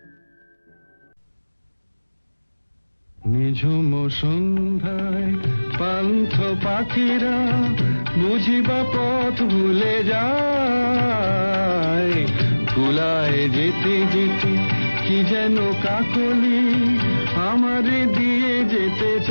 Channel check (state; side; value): inverted; both; correlation -1.00